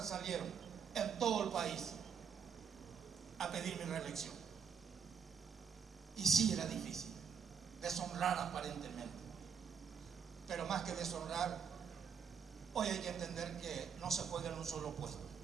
salieron en todo el país a pedir mi reelección. Y sí era difícil, deshonrar aparentemente. Pero más que deshonrar, hoy hay que entender que no se juega en un solo puesto.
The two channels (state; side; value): quieter; left; 6.8 dB